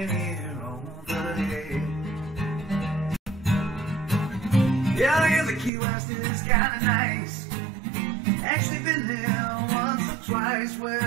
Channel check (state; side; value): drops out; left; at 5.7 s